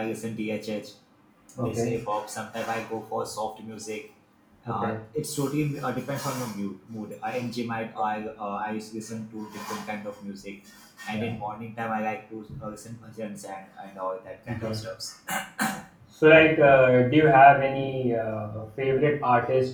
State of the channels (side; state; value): both; identical; correlation 1.00